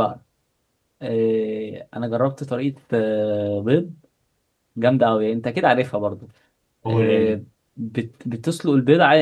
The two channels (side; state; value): both; identical; correlation 1.00